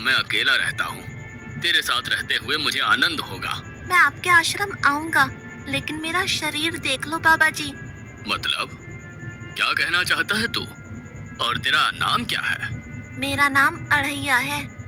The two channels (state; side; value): identical; both; correlation 1.00